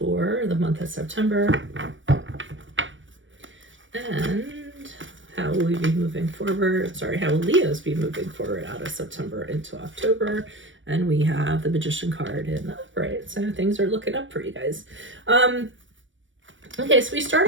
the month of September. And how will we be moving forward? Sorry, how will Leos be moving forward out of September into October? And we have the Magician card in the upright. So things are looking up for you guys. Okay, so we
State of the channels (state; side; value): late; left; 0.56 ms